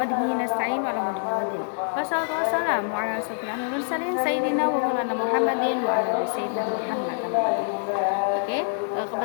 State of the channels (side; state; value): right; silent; 61 dB below the other